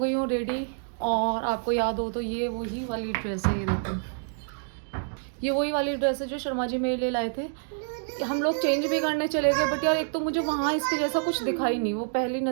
हूँ रेडी, और आपको याद हो तो ये वही वाली ड्रेस है, ये देखो, ये वही वाली ड्रेस है जो शर्मा जी मेरे लिए लाए थे। हम लोग चेंज भी करने चले गए, बट यार एक तो मुझे वहाँ इसके जैसा कुछ दिखा ही नहीं, वो पहली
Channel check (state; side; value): silent; left; digital silence